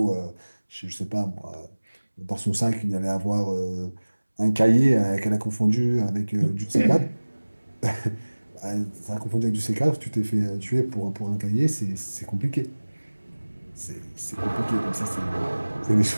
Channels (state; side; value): inverted; both; correlation -1.00